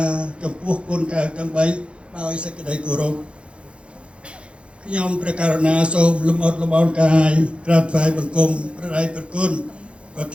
រចំពោះគុណកែវទាំង3ដោយសេចក្តីគោរពខ្ញុំព្រះករុណាសូមលំអរលំអរកាយក្រាបថ្វាយបង្គំព្រះដៃព្រះគុណប្រ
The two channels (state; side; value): late; left; 0.058 ms